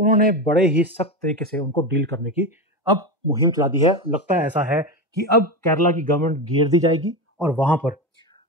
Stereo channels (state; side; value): normal; both; correlation 0.18